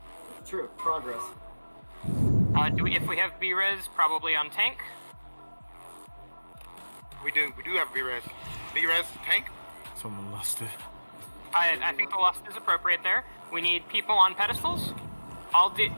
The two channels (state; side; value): inverted; both; correlation -1.00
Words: True. Progress. If we have B-Res, probably on tank. We do have B-Res. B-Res, tank. Someone lost it. I think the lust is appropriate there. We need people on pedestals. All